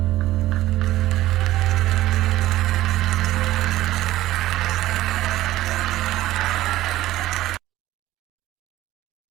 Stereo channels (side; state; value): left; quieter; 15.4 dB